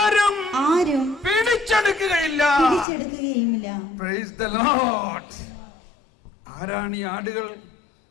പിടിച്ചെടുക്കുകയില്ല. Praise the Lord. ആരാണ് ഈ ആടുകൾ?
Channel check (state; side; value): drops out; right; at 2.9 s